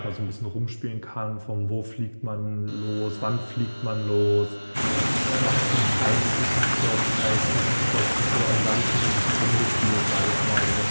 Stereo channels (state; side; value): inverted; both; correlation -1.00